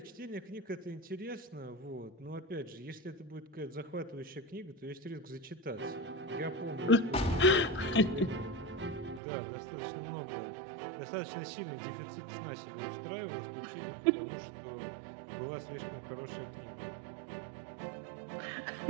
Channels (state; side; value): drops out; left; at 9.2 s